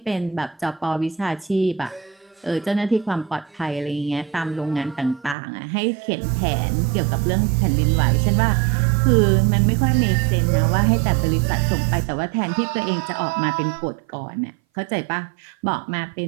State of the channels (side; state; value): left; drops out; at 5.4 s